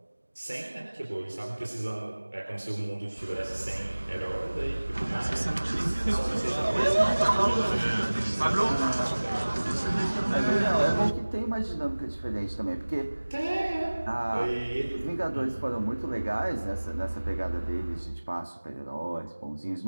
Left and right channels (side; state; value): both; inverted; correlation -1.00